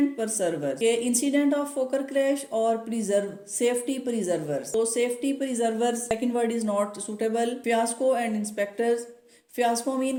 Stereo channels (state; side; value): identical; both; correlation 1.00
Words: परसर्वर, के इंसिडेंट ऑफ फोकर क्रैश और प्रिजर्व, सेफ्टी प्रिजर्वर्स। तो safety preservers second word is not suitable. Fiasco and inspectors, fiasco mean